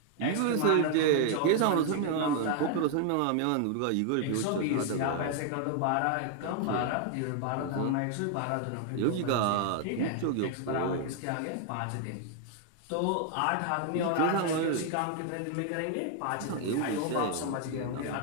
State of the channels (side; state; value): both; different; correlation 0.00